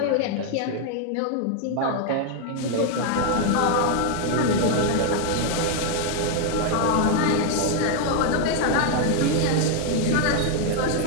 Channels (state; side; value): different; both; correlation 0.00